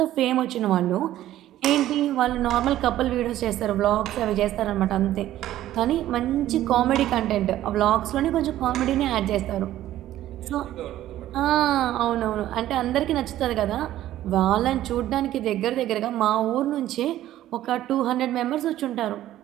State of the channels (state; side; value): quieter; left; 13.5 dB